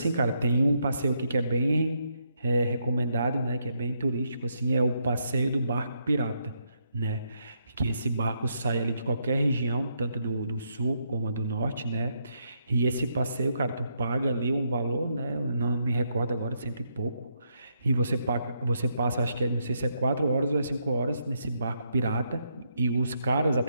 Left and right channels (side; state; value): both; inverted; correlation -0.78